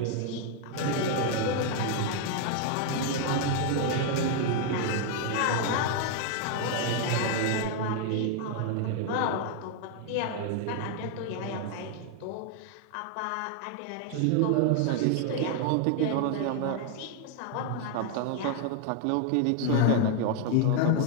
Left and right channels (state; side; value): different; both; correlation 0.00